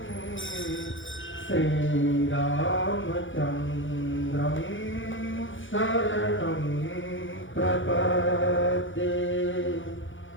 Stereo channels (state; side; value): late; right; 0.56 ms